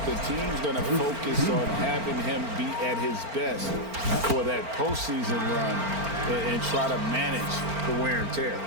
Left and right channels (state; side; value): late; left; 4.4 ms